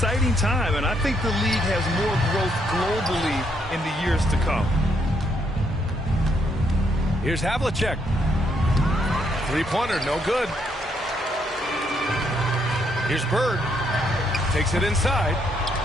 time, and I think the league has more growth globally in the years to come. Here's Havlicek. Three-pointer, no good. Here's Bird. Takes it inside.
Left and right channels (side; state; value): both; normal; correlation 0.74